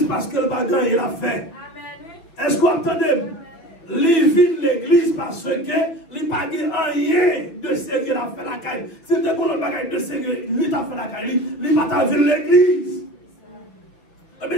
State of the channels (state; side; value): late; right; 6.3 ms